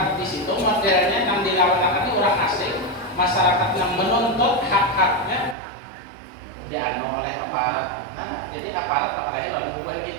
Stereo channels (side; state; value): left; drops out; at 5.6 s